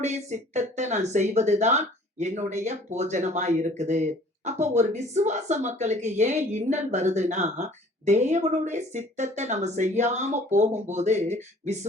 சித்தத்தை நான் செய்வதுதான் என்னுடைய போஜனமாய் இருக்குது. அப்போ ஒரு விசுவாச மக்களுக்கு ஏன் இன்னல் வருதுன்னா, தேவனுடைய சித்தத்தை நம்ம செய்யாம போகும்போது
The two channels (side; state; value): both; normal; correlation 0.52